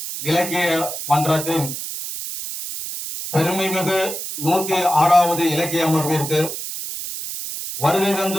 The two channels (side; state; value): right; noise; hiss, 7 dB below the sound